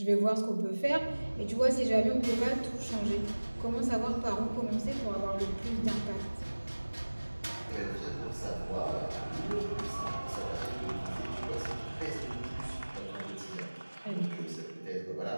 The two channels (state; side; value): inverted; both; correlation -1.00